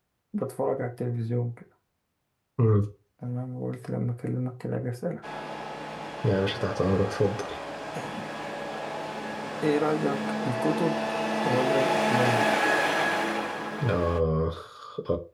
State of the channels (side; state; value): both; identical; correlation 1.00